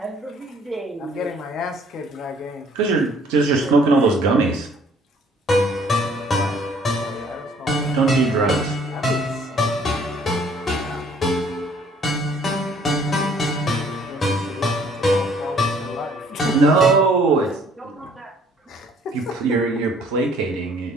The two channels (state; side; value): normal; both; correlation 0.59